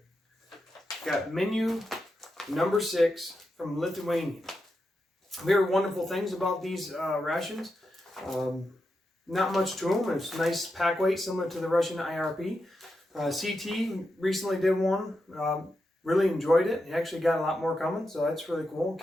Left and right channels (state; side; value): normal; both; correlation 0.87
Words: got menu number 6 from Lithuanian. We heard wonderful things about these rations. Not much to them. It's nice pack weight, similar to the Russian IRP. CT recently did one. Really enjoyed it. He actually got a lot more coming, so that's really cool.